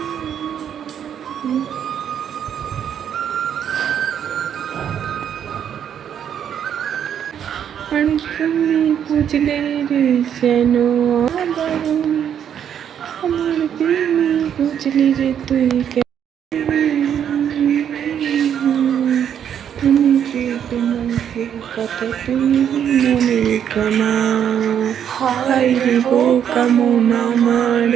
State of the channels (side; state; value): left; quieter; 9.0 dB